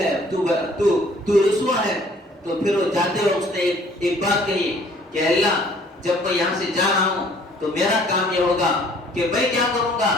تو رسوا ہے. تو پھر وہ جاتے وقت اس نے ایک بات کہی کہ اللہ جب میں یہاں سے جا رہا ہوں تو میرا کام یہ ہوگا کہ میں کیا کروں گا،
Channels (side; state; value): both; normal; correlation 0.57